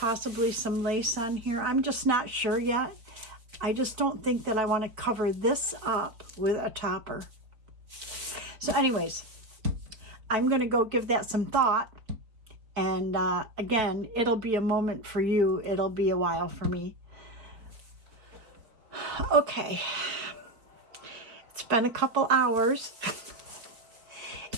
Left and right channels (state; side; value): late; left; 4.4 ms